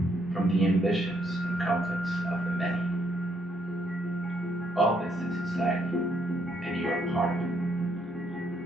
from the ambitions and conflicts of the many. All this is society, and you are part of it.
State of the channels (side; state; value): both; normal; correlation 0.73